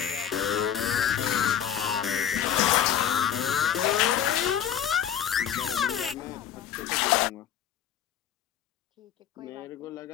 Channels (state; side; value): quieter; right; 9.6 dB